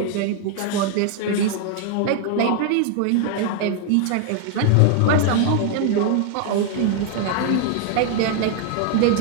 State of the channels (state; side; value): different; both; correlation 0.00